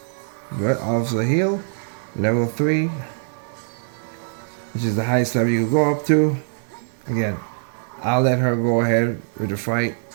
Good. Officer heal. Level 3. Which is the highest level you can go up to. Again, I'll let her go ahead with the fight.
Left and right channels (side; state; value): left; silent; 59 dB below the other